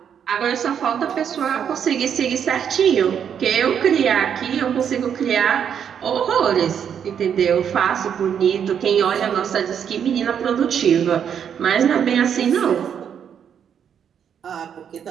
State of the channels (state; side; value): quieter; left; 8.2 dB